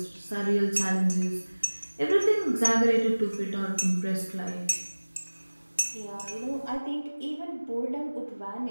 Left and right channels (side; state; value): both; inverted; correlation -1.00